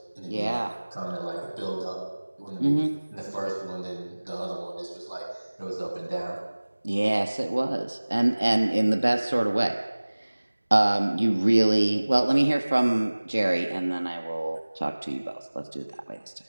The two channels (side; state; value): both; inverted; correlation -1.00